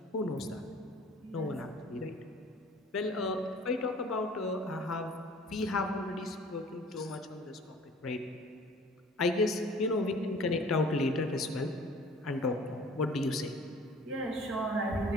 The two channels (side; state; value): both; normal; correlation 0.49